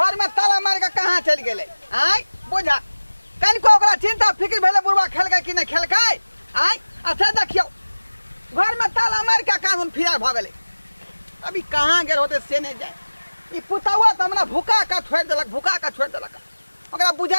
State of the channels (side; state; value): both; inverted; correlation -1.00